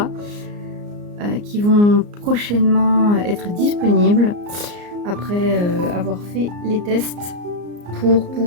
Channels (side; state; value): left; late; 34 ms